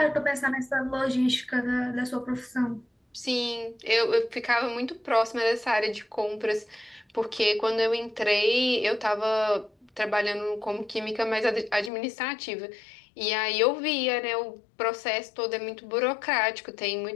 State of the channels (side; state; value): right; drops out; at 11.9 s